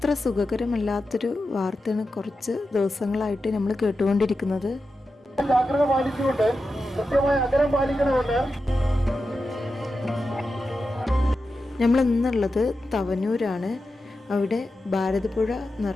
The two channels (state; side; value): normal; both; correlation 0.90